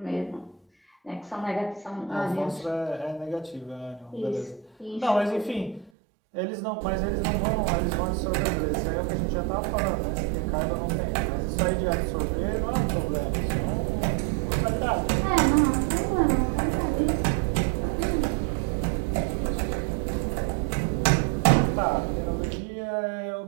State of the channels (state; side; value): drops out; left; at 5.9 s